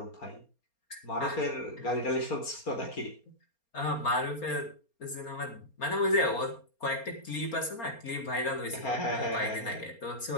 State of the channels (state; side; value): late; right; 4.3 ms